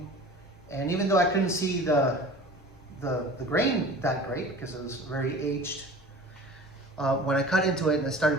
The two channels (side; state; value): both; normal; correlation 0.41